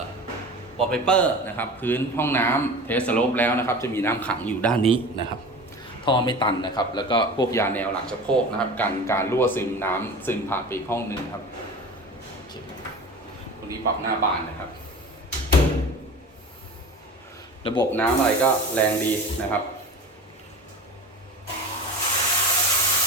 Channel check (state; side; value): normal; both; correlation 0.35